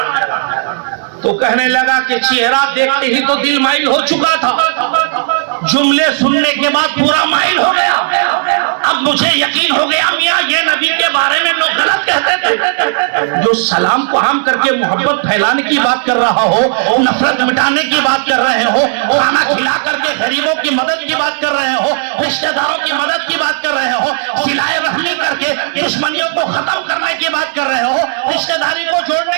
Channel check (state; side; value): silent; left; digital silence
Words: تو کہنے لگا کہ چہرہ دیکھتے ہی تو دل مائل ہو چکا تھا، جملے سننے کے بعد پورا مائل ہو گیا۔ اب مجھے یقین ہو گیا میاں یہ نبی کے بارے میں لوگ غلط کہتے تھے۔ جو سلام کو عام کر کے محبت پھیلانے کی بات کر رہا ہو، نفرت مٹانے کی بات کر رہے ہو، کھانا کھلا کر کے غریبوں کی مدد کی بات کر رہے ہو، رشتہ داروں کی مدد کی بات کر رہے ہو، صلہ رحمی کر کے دشمنیوں کو ختم کرنے کی بات کر رہے ہو، رشتہ داری کو جوڑنے